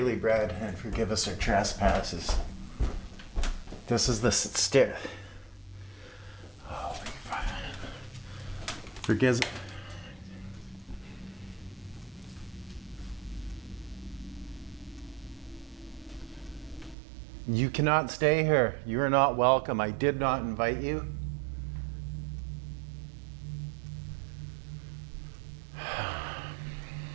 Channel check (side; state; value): left; drops out; at 16.9 s